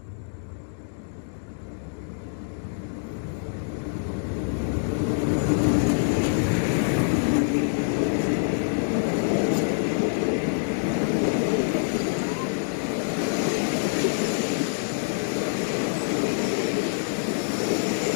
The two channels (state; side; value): silent; right; digital silence